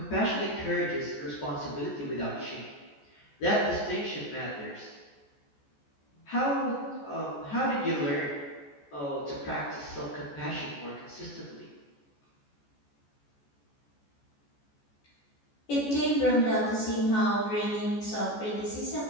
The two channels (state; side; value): late; right; 14 ms